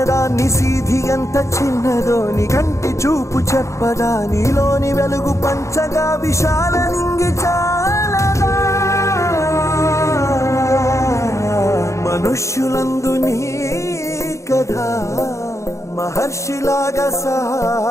నిసీధి ఎంత చిన్నదో నీ కంటి చూపు చెప్పదా, నీలోని వెలుగు పంచగా విశాల నింగి చాలదా. మనుష్యులందు నీ కథ మహర్షిలాగా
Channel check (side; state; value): right; late; 0.14 ms